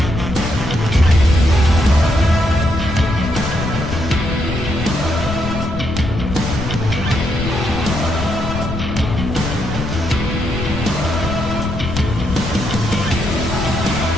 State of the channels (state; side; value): noise; left; rumble, 5 dB below the sound